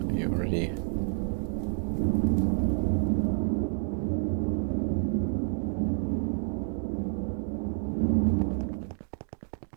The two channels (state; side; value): silent; left; digital silence